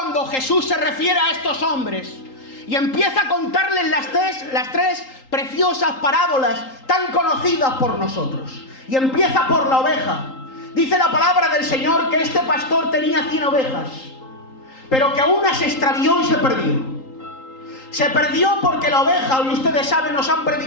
Jesús se refiere a estos hombres y empieza a contarles las tres preciosas parábolas tan conocidas por nosotros. Y empieza por la oveja. Dice la palabra del Señor que este pastor tenía 100 ovejas, pero que una se extravió y se perdió. Se perdió porque la oveja, y ustedes saben, nos han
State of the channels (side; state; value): right; late; 3.8 ms